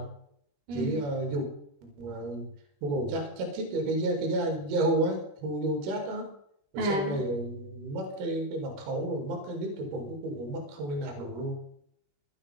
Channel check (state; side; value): late; left; 21 ms